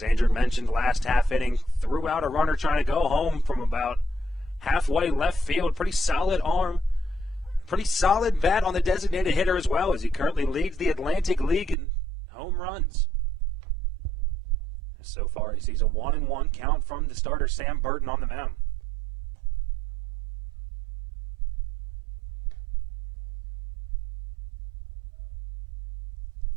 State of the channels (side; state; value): left; drops out; at 11.8 s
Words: Andrew mentioned, last half inning, threw out a runner trying to go home from about halfway left field. Pretty solid arm. Pretty solid bat on the designated hitter as well, as he currently leads the Atlantic League in home runs. So far, he sees a 1-1 count from the starter Sam Burton on the mound.